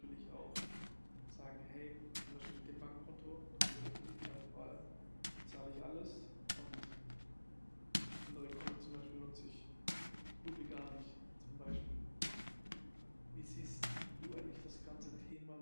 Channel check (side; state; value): both; inverted; correlation -1.00